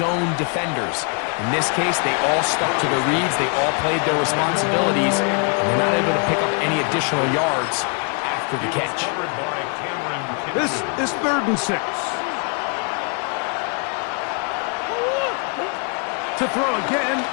defenders. In this case, they all stuck to their reads, they all played their responsibilities, and they're not able to pick up any additional yards after the catch. This is 3rd and 6. To throw again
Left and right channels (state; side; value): quieter; right; 38.1 dB